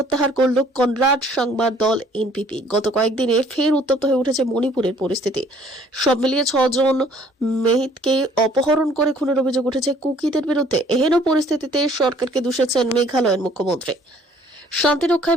করল কনরাড সাংমার দল NPP। গত কয়েকদিনে ফের উত্তপ্ত হয়ে উঠেছে মণিপুরের পরিস্থিতি। সব মিলিয়ে 6 জন মেহিতকে অপহরণ করে খুনের অভিযোগ উঠেছে কুকিদের বিরুদ্ধে। এহেন পরিস্থিতিতে সরকারকে দোষেছেন মেঘালয়ের মুখ্যমন্ত্রী। শান্তি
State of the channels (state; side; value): normal; both; correlation 0.58